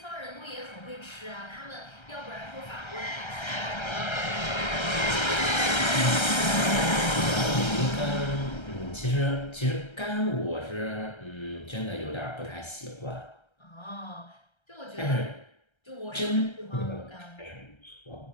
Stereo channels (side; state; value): right; late; 1.3 ms